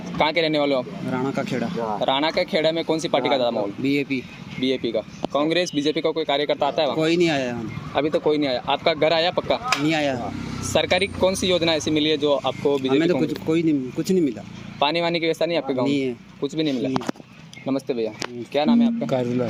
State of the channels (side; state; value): both; identical; correlation 1.00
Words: के रहने वाले हो आप? राणा का खेड़ा। राणा के खेड़ा में कौन सी पार्टी का ज़्यादा माहौल? बीजेपी। बीजेपी का। कांग्रेस बीजेपी का कोई कार्यकर्ता आता है वहाँ? कोई नहीं आया यहाँ, अभी तो कोई नहीं आया। आपका घर आया पक्का? नहीं आया। सरकारी कौन सी योजना ऐसी मिली है जो आपको हमें बीजेपी तो कुछ नहीं मिला। पानी वानी की व्यवस्था नहीं है आपके गाँव नहीं में? है। कुछ भी नहीं मिला। नमस्ते भैया। क्या नाम है आपका? कारुला